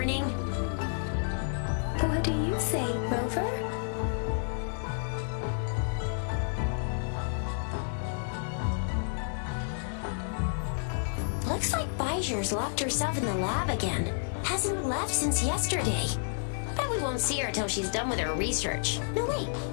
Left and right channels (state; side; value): silent; right; digital silence